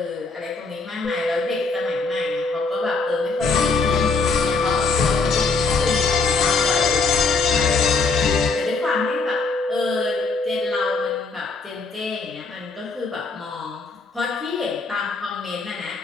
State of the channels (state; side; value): quieter; right; 4.1 dB